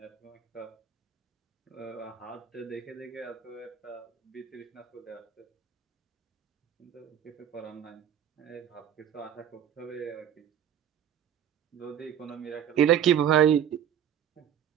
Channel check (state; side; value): quieter; left; 9.3 dB